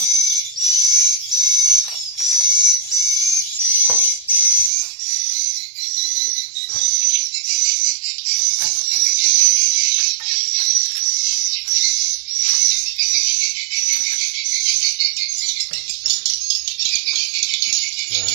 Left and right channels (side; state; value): left; drops out; at 4.7 s